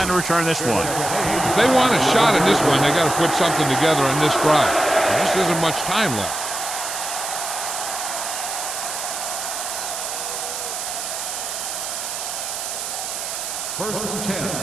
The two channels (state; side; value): noise; right; hiss, 5 dB below the sound